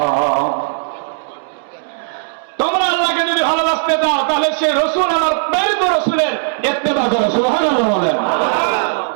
তোমরা আল্লাহকে যদি ভালোবাসতে চাও তাহলে সেই রাসূল, আমার প্রেরিত রাসূলের ইত্তেবা করো। সুবহানাল্লাহ বলেন।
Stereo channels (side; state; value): left; silent; 68 dB below the other